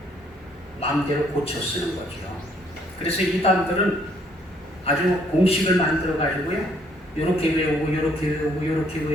마음대로 고쳐 쓰는 거죠. 그래서 이단들은 아주 공식을 만들어 가지고요, 이렇게 외우고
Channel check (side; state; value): both; normal; correlation 0.66